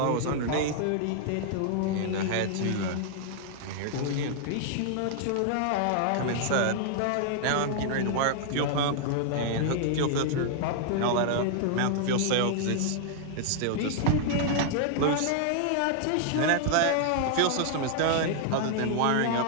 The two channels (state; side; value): different; both; correlation -0.01